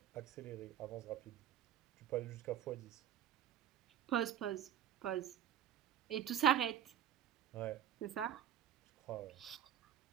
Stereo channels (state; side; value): quieter; left; 10.2 dB